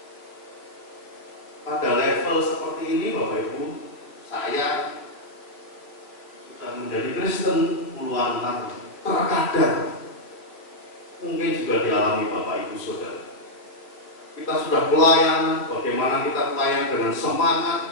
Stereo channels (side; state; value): right; late; 3.1 ms